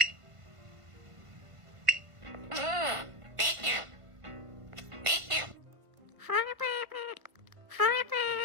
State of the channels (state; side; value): late; left; 1.5 ms